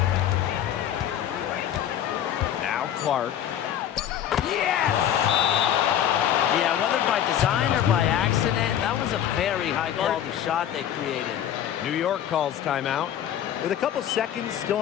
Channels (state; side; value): quieter; right; 10.4 dB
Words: Now Clark. Yeah, whether by design or by accident, that was a very high-quality shot they created. New York calls timeout. With a couple seconds still